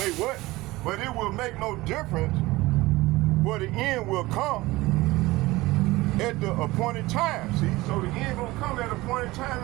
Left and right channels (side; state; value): left; quieter; 19.8 dB